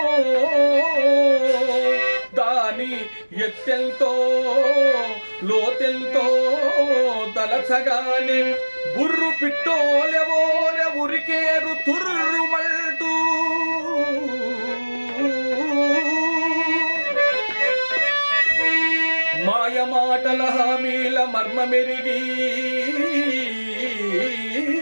దాని ఎత్తెల్తో లోతెల్తో తలచగానే బుర్రు పిట్టోలెవోర ఉరికేరు తుర్రుమంటూ. మాయమాటల హామీల మర్మమెరిగి,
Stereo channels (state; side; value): inverted; both; correlation -1.00